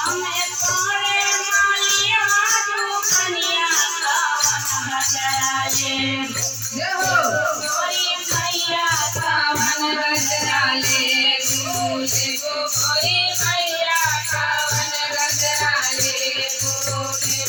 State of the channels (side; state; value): both; identical; correlation 1.00